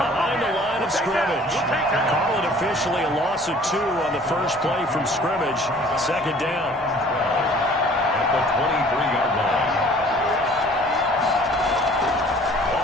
the line of scrimmage. Call it officially a loss of 2 on the first play from scrimmage. Second down. At the 23-yard line.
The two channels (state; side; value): normal; both; correlation 0.52